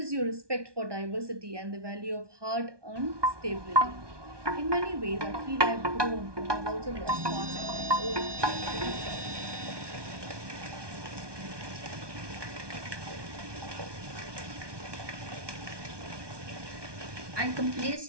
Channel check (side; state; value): left; late; 1.2 ms